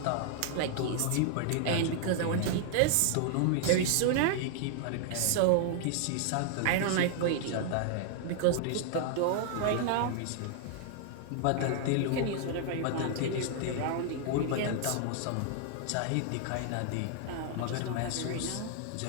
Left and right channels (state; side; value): different; both; correlation 0.00